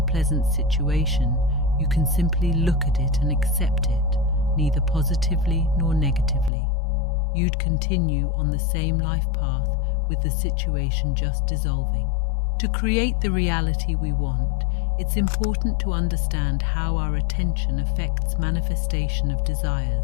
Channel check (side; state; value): right; drops out; at 6.5 s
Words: situation, you can simply look at it and accept it, neither positively nor negatively. You'd continue on the same life path with the situation just dissolving. To create the reality we want, it's important to understand how our attention affects manifestation of